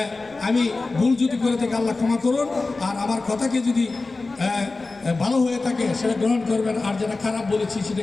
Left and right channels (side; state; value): right; quieter; 3.5 dB